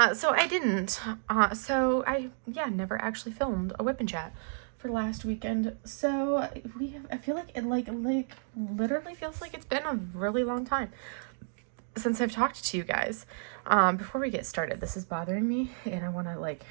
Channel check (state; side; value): silent; left; digital silence